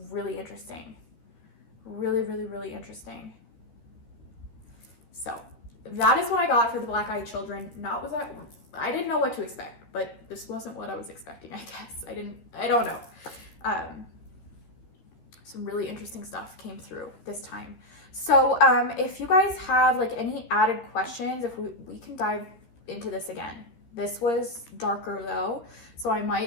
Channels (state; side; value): late; right; 13 ms